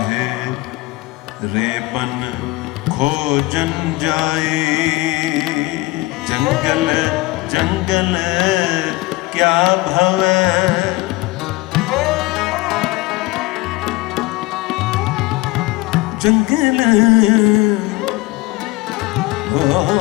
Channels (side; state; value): right; quieter; 20.4 dB